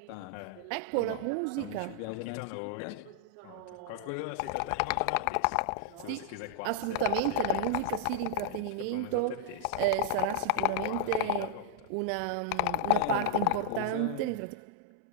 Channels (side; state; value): both; different; correlation -0.01